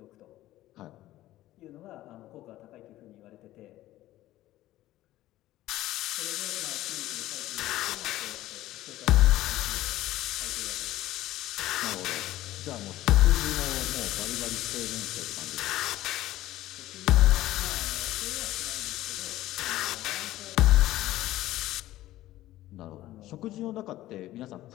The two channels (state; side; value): quieter; right; 15.3 dB